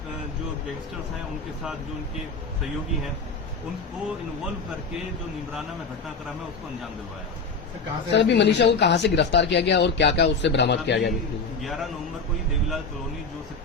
जो गैंगस्टर्स हैं उनके साथ, जो उनके सहयोगी हैं, उनको इन्वॉल्व करके जो नीमराना में घटनाक्रम है उसको अंजाम दिलवाया। सर, अभी मनीषा को कहाँ से गिरफ्तार किया गया और क्या क्या उससे बरामद किया गया? 11 नवंबर को ही देवीलाल कॉलोनी, जो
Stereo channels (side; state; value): right; quieter; 4.2 dB